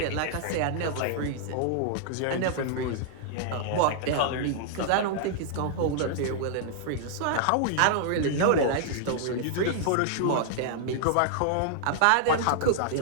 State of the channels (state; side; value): different; both; correlation -0.01